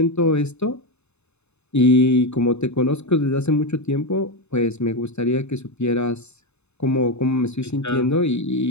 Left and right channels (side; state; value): right; late; 0.81 ms